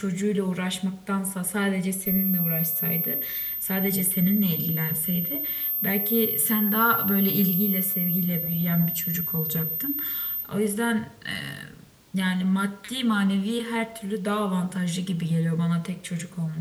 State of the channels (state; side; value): identical; both; correlation 1.00